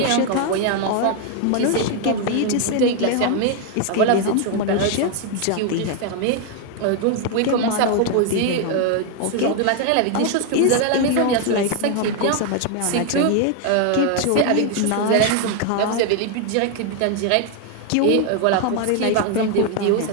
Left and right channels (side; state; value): both; different; correlation 0.01